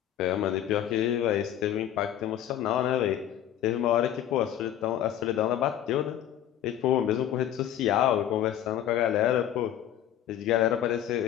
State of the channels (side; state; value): right; quieter; 11.1 dB